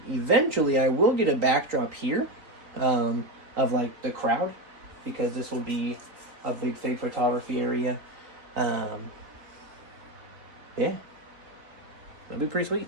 Eventually, I will get a backdrop here of like the crowd, because this will be a big fig photography area. Yeah. It'll be pretty sweet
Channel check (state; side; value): late; left; 3.8 ms